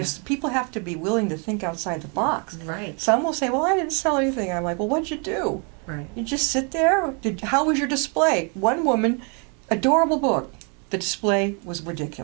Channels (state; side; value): quieter; left; 36.2 dB